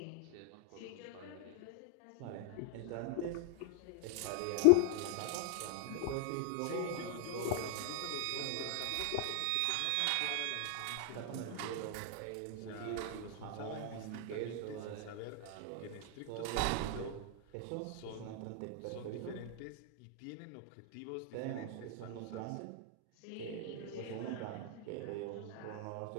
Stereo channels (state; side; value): different; both; correlation 0.00